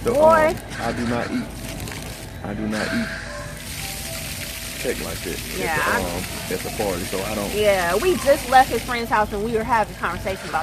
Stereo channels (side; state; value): both; identical; correlation 1.00